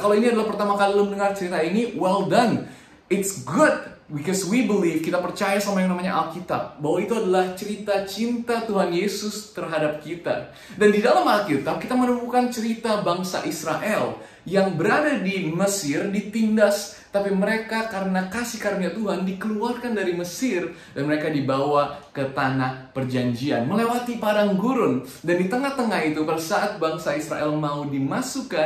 ini adalah pertama kali lo mendengar cerita ini, well done. It's good, because we believe, kita percaya sama yang namanya Alkitab, bahwa itu adalah cerita cinta Tuhan Yesus terhadap kita. Dan di dalam Alkitab, kita menemukan cerita bangsa Israel yang berada di Mesir, ditindas, tapi mereka karena kasih karunia Tuhan dikeluarkan dari Mesir dan mereka dibawa ke tanah perjanjian, melewati padang gurun. Dan di tengah-tengah itu, pada saat bangsa Israel mau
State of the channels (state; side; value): identical; both; correlation 1.00